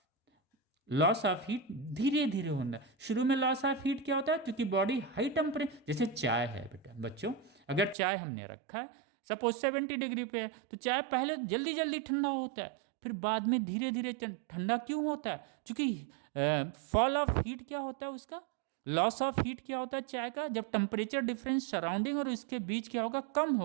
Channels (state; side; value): drops out; left; at 8.0 s